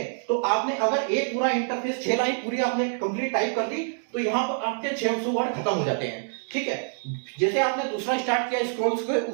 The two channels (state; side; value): silent; left; digital silence